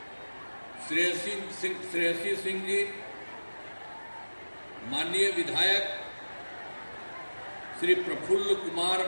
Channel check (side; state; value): both; inverted; correlation -1.00